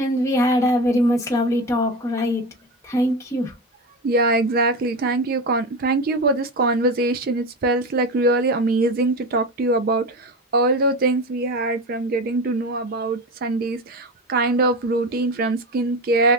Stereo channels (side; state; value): both; normal; correlation 0.23